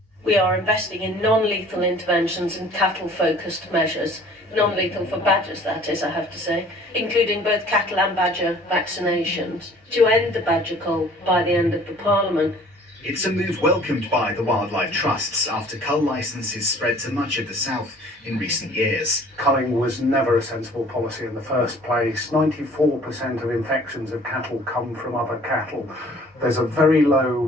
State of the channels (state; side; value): normal; both; correlation 0.52